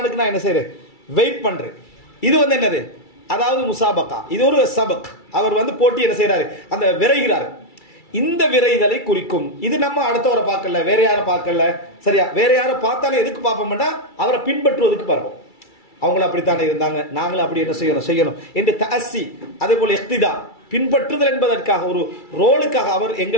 நான் என்ன செய்றேன்? வெயிட் பண்றேன். இது வந்து என்னது? அதாவது முசாபகா. இது ஒரு சபக். அவர் வந்து போட்டி என்ன செய்யறாரு? அந்த விரைகிறாரு. இந்த விரைதலை குறிக்கும். இது நம்ம அடுத்தவரை பார்க்கல, வேற யாரை பார்க்கல. சரியா? வேற யாரை பார்த்தாலும் எதுக்கு பார்ப்போம்னா அவரை பின்பற்றுவதற்கு பார்ப்போம். அவங்களும் அப்படித்தானே இருந்தாங்க, நாங்களும் அப்படி என்ன செய்யணும் என்று தஅஸ்ஸி, அதே போல இக்திதா, பின்பற்றுதல் என்பதற்காக, ஒரு ரோலுக்காக, அவர்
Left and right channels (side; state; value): right; late; 2.3 ms